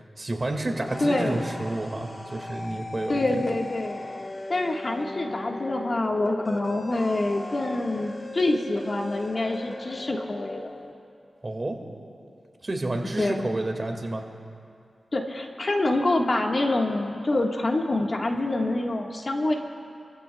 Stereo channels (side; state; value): both; normal; correlation 0.95